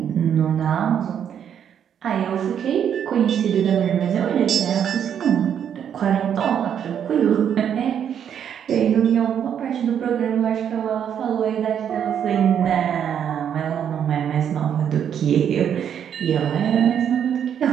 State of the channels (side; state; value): left; quieter; 8.7 dB